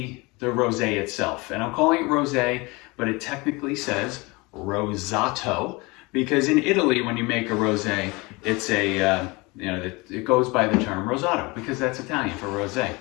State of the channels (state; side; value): quieter; right; 25.1 dB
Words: rosé itself. And I'm calling it rosé, but it technically says Rosato, because in Italy, when you make a rosé, it's a it goes by the term Rosato because that's Italian for rosé.